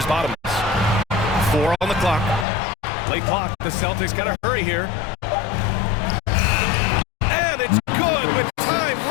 Bottoms. 4 on the clock. Late clock. The Celtics got to hurry here. And it's good with time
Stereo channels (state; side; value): drops out; right; at 2.5 s